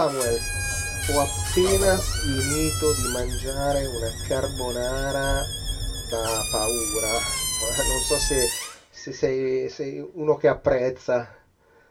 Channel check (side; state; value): both; identical; correlation 1.00